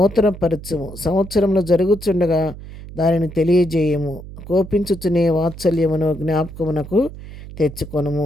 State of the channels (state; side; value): noise; right; hum, 14 dB below the sound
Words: సంవత్సరంలో జరుగుచుండగా దానిని తెలియజేయము. కోపించుచునే వాత్సల్యమును జ్ఞాపకమునకు